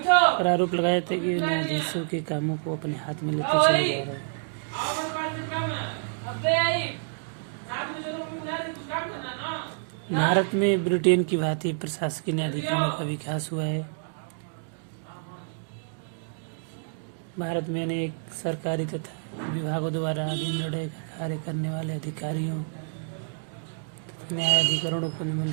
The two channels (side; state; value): left; silent; digital silence